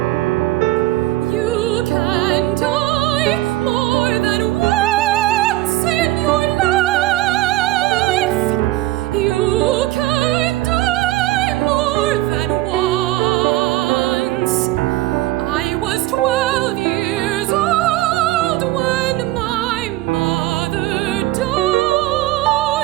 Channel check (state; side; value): quieter; left; 17.0 dB